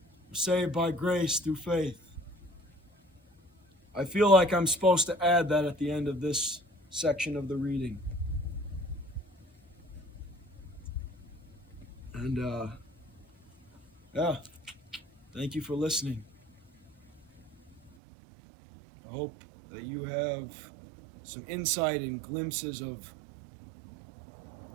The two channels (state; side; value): drops out; left; at 17.9 s